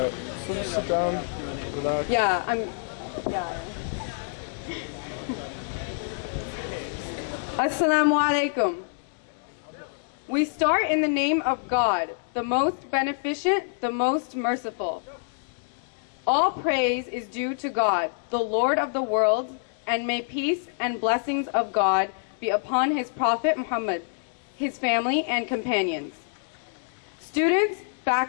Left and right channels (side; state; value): right; silent; digital silence